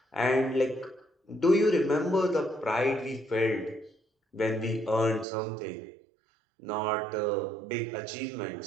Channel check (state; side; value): drops out; left; at 5.2 s